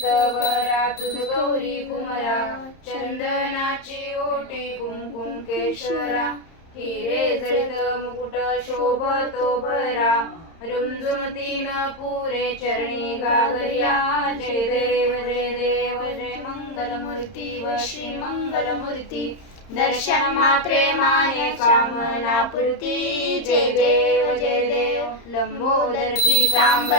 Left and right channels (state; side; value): late; right; 30 ms